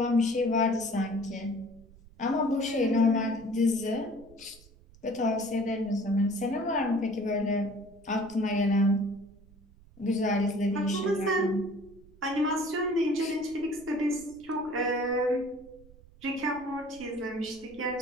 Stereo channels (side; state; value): right; noise; rumble, 24 dB below the sound